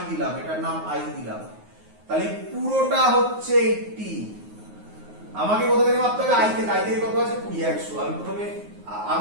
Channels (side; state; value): left; late; 9.5 ms